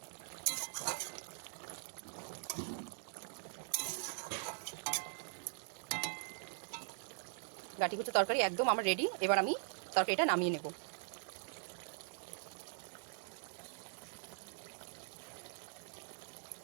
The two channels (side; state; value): left; silent; digital silence